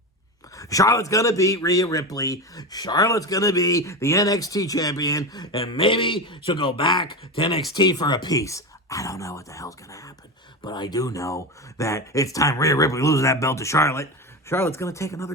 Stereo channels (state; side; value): normal; both; correlation 0.20